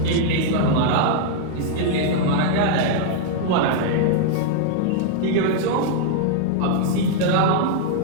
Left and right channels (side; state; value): both; different; correlation -0.01